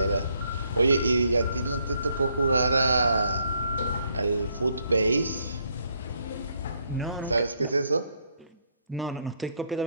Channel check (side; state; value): both; inverted; correlation -0.72